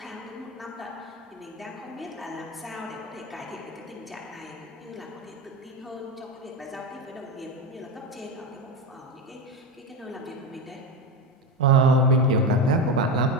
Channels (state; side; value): normal; both; correlation 0.16